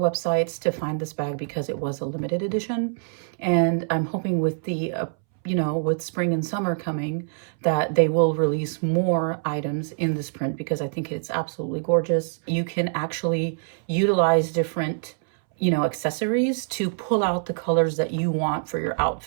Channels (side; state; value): left; silent; 62 dB below the other